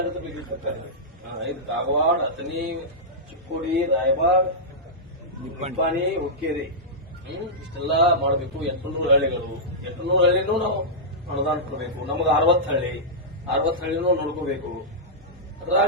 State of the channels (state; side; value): normal; both; correlation -0.12